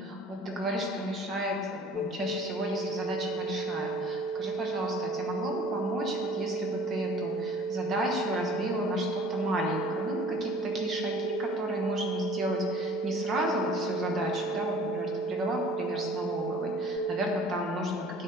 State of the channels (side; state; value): both; normal; correlation 0.50